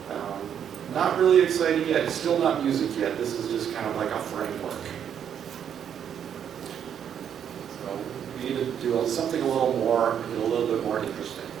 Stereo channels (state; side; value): quieter; left; 8.7 dB